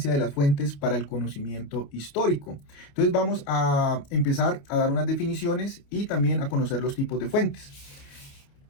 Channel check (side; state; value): right; late; 28 ms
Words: de las fuentes para el conocimiento histórico? Entonces vamos a empezar a dar unas definiciones y también a conocer los tipos de fuentes.